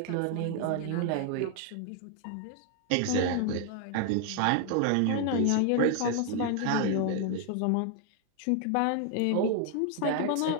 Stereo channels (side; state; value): both; different; correlation 0.00